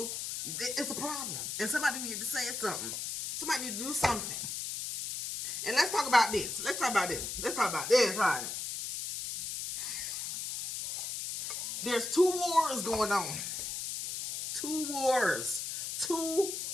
it's a problem. And somebody needed to say something. Somebody need to do something. And let's talk about this. Let's talk about this, right? There's 2 wars going on. 2 wars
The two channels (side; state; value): left; noise; hiss, 4 dB below the sound